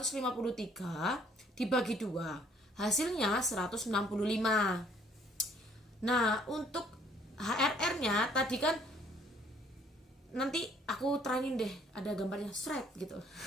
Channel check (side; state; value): both; normal; correlation 0.62